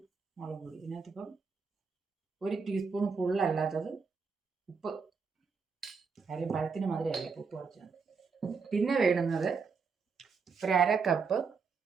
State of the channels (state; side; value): quieter; left; 5.2 dB